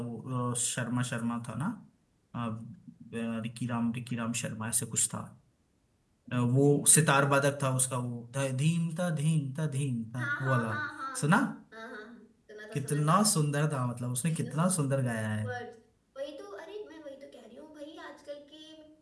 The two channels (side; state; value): both; identical; correlation 1.00